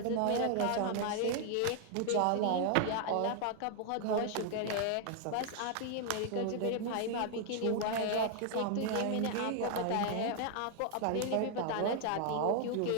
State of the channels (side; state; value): both; different; correlation 0.00